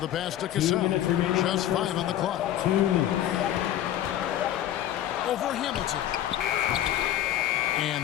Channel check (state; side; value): quieter; right; 12.1 dB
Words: pass to Cassell. Just 5 on the clock. 2 minutes. Over Hamilton.